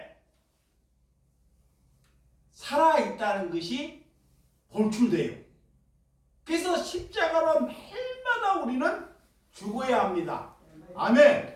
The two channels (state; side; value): identical; both; correlation 1.00